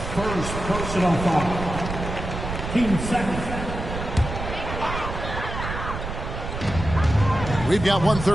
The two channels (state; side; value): noise; right; rumble, 6 dB below the sound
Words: personal foul. Team second. We've got